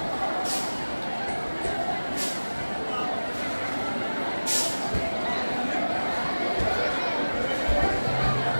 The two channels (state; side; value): inverted; both; correlation -1.00